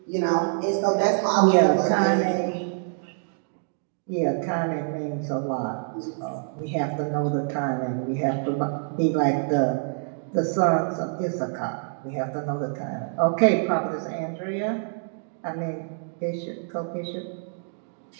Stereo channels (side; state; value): left; silent; digital silence